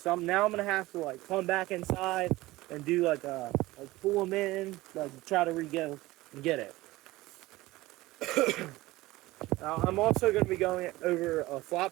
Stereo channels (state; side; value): quieter; left; 18.8 dB